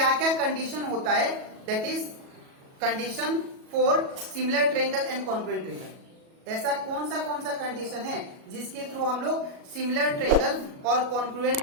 क्या कंडीशन होता है, that is condition for similar triangle and congruent triangle. ऐसा कौन सा कंडीशन है जिसके थ्रू हम लोग सिमिलर ट्रायंगल और कॉन्ग्रुएंट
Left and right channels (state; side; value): late; left; 37 ms